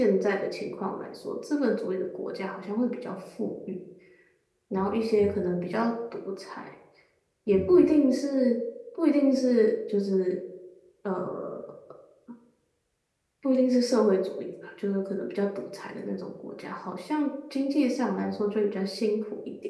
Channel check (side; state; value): both; identical; correlation 1.00